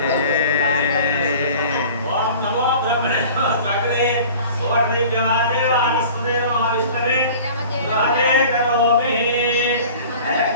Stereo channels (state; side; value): inverted; both; correlation -0.43